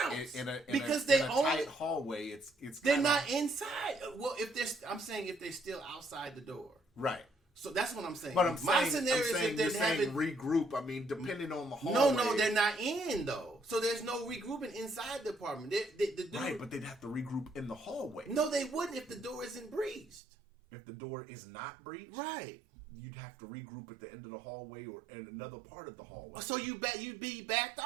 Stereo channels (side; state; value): left; drops out; at 20.2 s